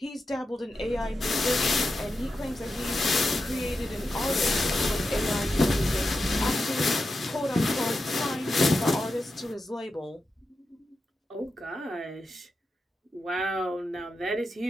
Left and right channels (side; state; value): both; normal; correlation 0.89